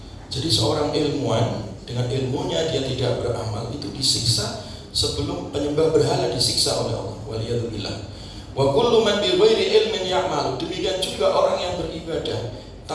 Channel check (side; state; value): both; identical; correlation 1.00